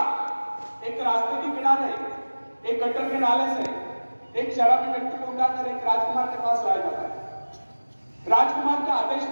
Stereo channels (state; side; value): inverted; both; correlation -1.00